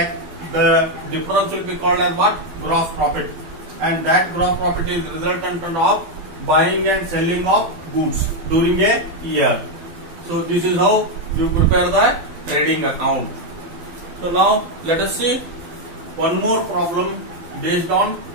the difference will be called as what? Gross profit. And that gross profit is resultant of buying and selling of goods during a year. So this is how you prepare the trading account. So now let us see one more problem based on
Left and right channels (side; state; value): left; late; 12 ms